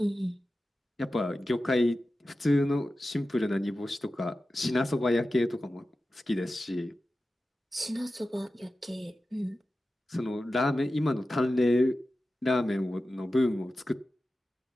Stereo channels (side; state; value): both; normal; correlation 0.93